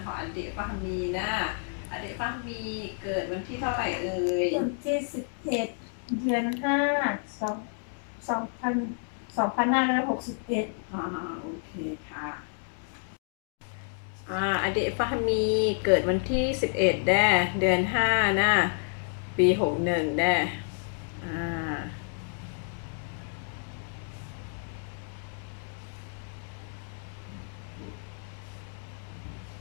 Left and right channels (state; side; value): silent; right; 58 dB below the other